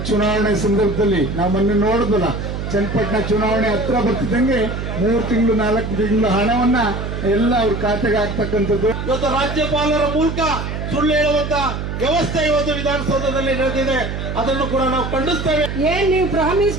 ಚುನಾವಣೆ ಸಂದರ್ಭದಲ್ಲಿ ನಾವು ಮೊನ್ನೆ ನೋಡಿದ್ವಲ್ಲ, ಚನ್ನಪಟ್ಟಣ ಚುನಾವಣೆ ಹತ್ರ ಬರ್ತಿದ್ದಂಗೆ 3 ತಿಂಗಳು 4 ತಿಂಗಳು ಹಣವನ್ನ ಎಲ್ಲ ಅವ್ರ ಖಾತೆಗೆ ಹಾಕ್ತಕ್ಕಂಥದ್ದು. ಇವತ್ತು ರಾಜ್ಯಪಾಲರ ಮೂಲಕ ಸುಳ್ಳು ಹೇಳುವಂತ ವ್ಯವಸ್ಥೆ ಇವತ್ತು ವಿಧಾನಸೌಧದಲ್ಲಿ ನಡೆದಿದೆ. ಅದನ್ನು ಕೂಡ ನಾವು ಖಂಡಿಸ್ತೇವೆ. ಏನ್ ನೀವು ಪ್ರಾಮಿಸ್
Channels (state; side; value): noise; right; hum, 5 dB below the sound